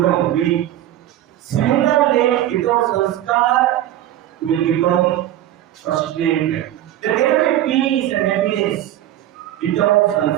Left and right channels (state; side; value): quieter; left; 12.9 dB